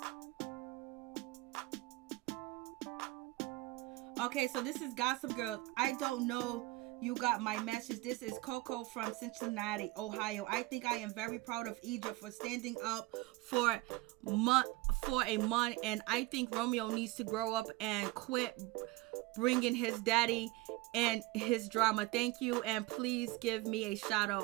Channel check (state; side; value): quieter; left; 20.5 dB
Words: Okay, so this is Gossip Girl. I don't know you got my message. This is Coco from Cincinnati, Ohio. I think I am very proud of Egypt for standing up for a month, and I think Romeo needs to grow up and quit bringing his daddy and his drama. Thank you, and please give me a shout